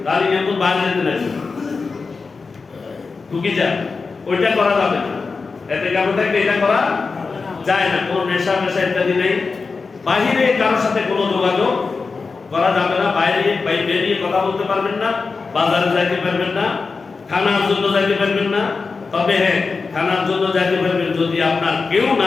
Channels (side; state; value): right; quieter; 4.5 dB